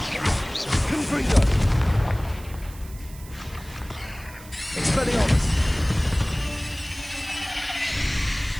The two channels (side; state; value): right; noise; hiss, 20 dB below the sound